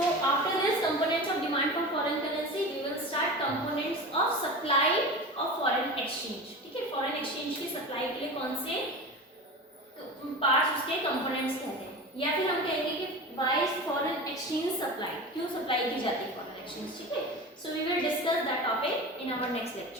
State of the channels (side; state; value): both; normal; correlation 0.30